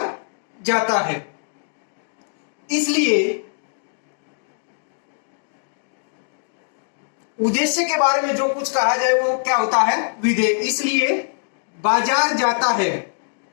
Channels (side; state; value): right; silent; digital silence